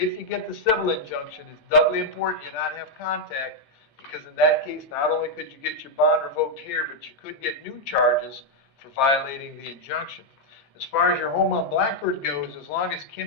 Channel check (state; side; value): normal; both; correlation -0.01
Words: you get the civil injunction, it's doubly important you not have contact, because in that case, not only could you get your bond revoked here, but you could get new charges for violating the injunction. As far as your home on Blackbird goes, as long as